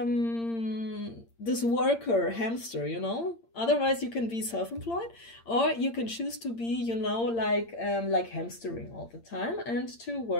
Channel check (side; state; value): right; late; 8.7 ms